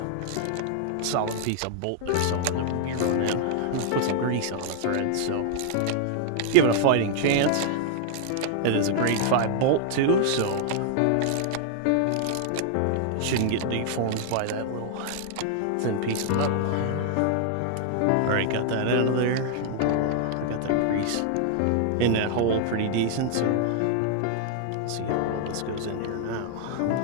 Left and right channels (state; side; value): different; both; correlation -0.01